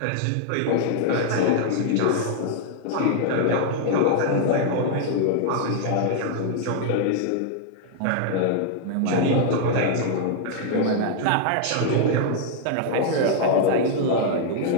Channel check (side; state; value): both; different; correlation -0.01